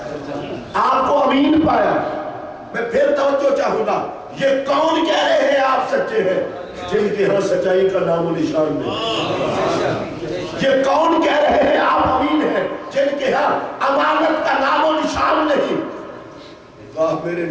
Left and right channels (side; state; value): both; identical; correlation 1.00